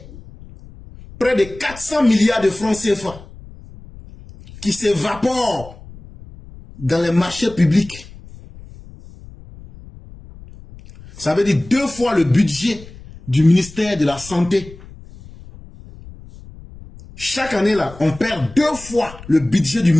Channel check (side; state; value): left; noise; rumble, 19 dB below the sound